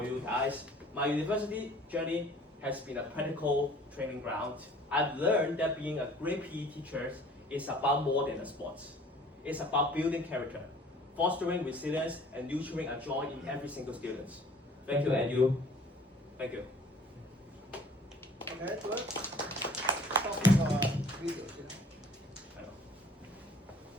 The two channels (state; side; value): normal; both; correlation 0.51